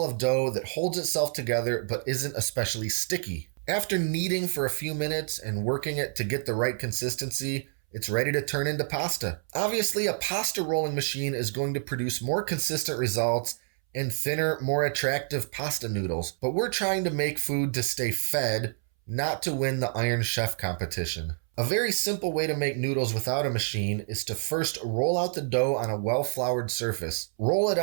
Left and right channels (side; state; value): left; silent; 59 dB below the other